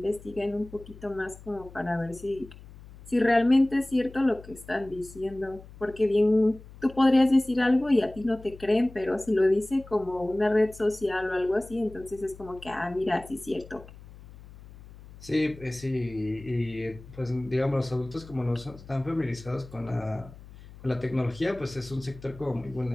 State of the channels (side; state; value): left; noise; hum, 19 dB below the sound